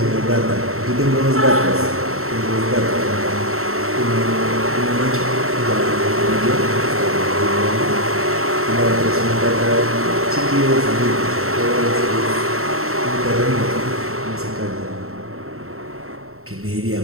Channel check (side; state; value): left; late; 0.63 ms